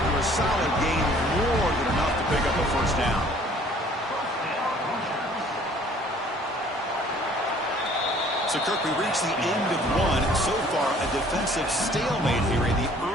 a solid gain. More than enough to pick up a first down. So, Kirk, we reach the end of one. So far, a defensive stalemate here in the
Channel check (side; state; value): both; normal; correlation 0.55